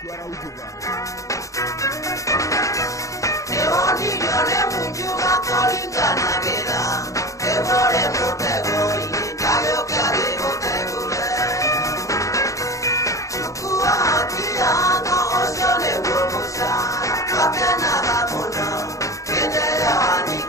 araujuga Ewonilole munjuga kolingana gera Ewore mutego initayo kyage mutegule Chukua kiango osione womusa Kapena gamuno Kendera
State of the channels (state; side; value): late; right; 0.16 ms